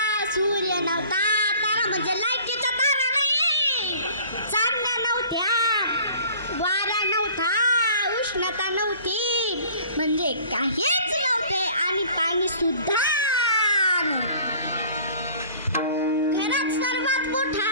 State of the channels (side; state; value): both; inverted; correlation -0.50